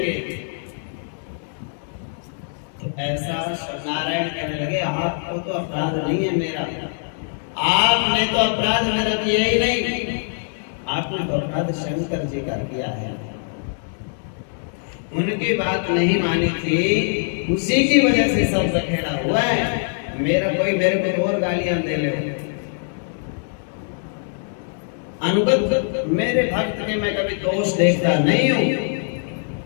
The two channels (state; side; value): silent; right; digital silence